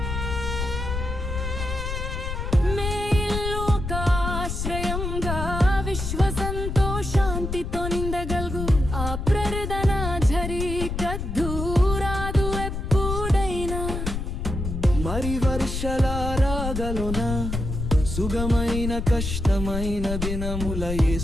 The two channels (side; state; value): left; noise; rumble, 4 dB below the sound